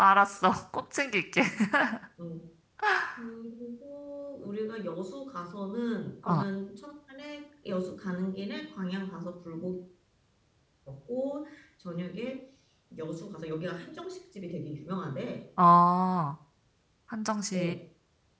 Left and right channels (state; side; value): identical; both; correlation 1.00